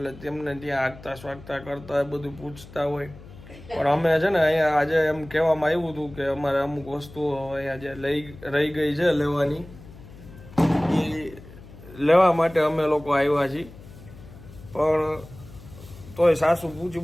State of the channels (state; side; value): noise; left; hum, 18 dB below the sound